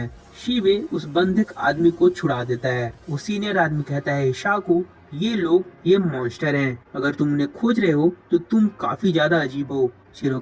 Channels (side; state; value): both; identical; correlation 1.00